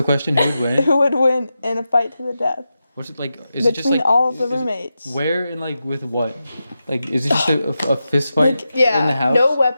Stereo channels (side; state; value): both; inverted; correlation -0.90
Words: question? Who would win? Who would win in a fight to the death? What's it like? Is it just Between like all of the is it- roommates. Where and like with what? Like, is it just a fist fight Yeah. in the house? No